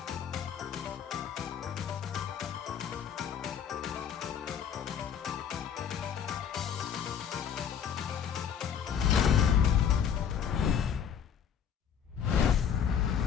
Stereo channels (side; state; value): right; quieter; 8.1 dB